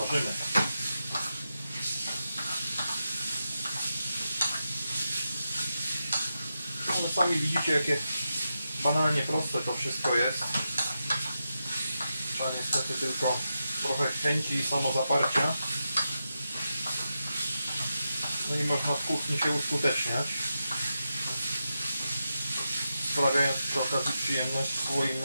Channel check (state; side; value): inverted; both; correlation -0.88